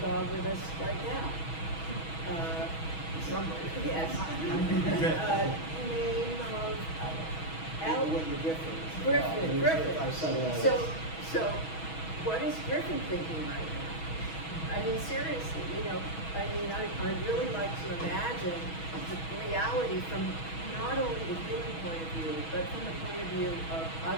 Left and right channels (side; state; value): right; late; 6.2 ms